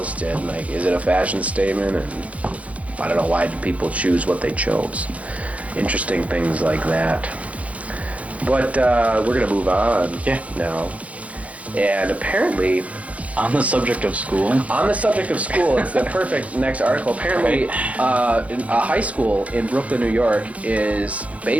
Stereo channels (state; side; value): late; left; 0.066 ms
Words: did. Like, is it a fashion statement? And I don't know, why did people choose what they chose? Interesting things like that. But we're going to move on now. And apparently, on the subject of school, it's the perfect next article. Apparently, a high school in Brooklyn, New York is